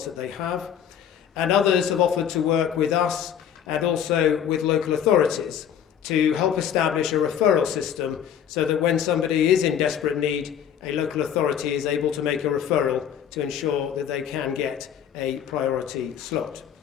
that they have, and others have offered to work with us and also with local authorities to help establish a referral system so that when somebody is in desperate need, a local authority is able to make a referral to ensure that they can get a priority slot.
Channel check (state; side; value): quieter; right; 9.0 dB